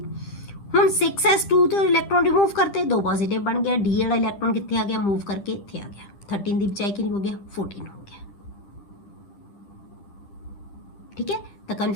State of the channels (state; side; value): late; right; 10 ms